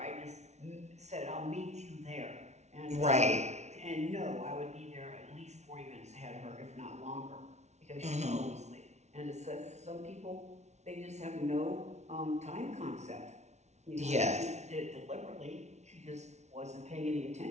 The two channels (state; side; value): late; left; 0.32 ms